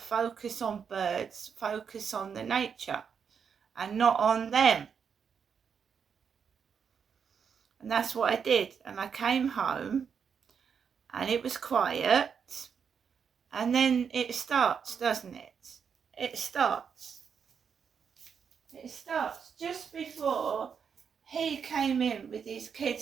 on birds, focus on the nature, and not on them. And that's what I did. And I came home, and it was quiet. And then it starts, doesn't it? It starts just before he came in with his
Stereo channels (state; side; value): quieter; left; 6.8 dB